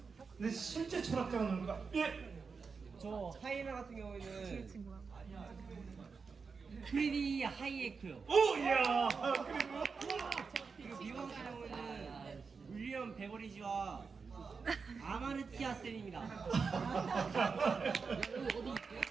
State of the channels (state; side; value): quieter; left; 5.1 dB